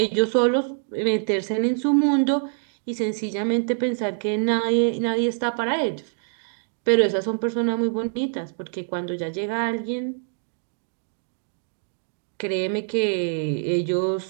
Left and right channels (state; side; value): silent; left; 62 dB below the other